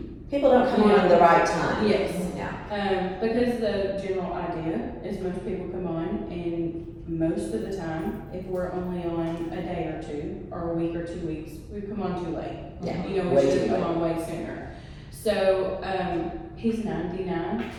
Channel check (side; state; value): both; identical; correlation 1.00